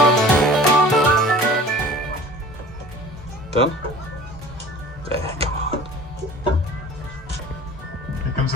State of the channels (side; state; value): both; normal; correlation 0.43